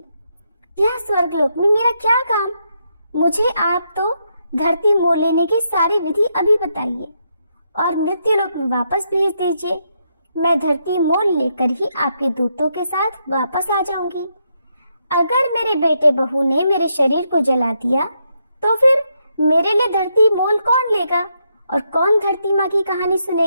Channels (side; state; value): both; inverted; correlation -0.79